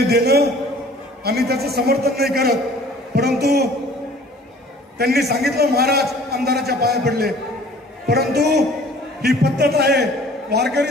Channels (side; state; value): both; normal; correlation 0.51